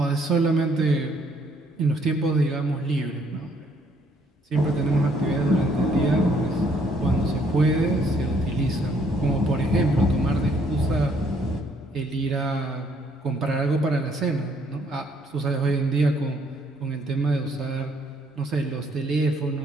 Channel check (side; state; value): both; normal; correlation 0.66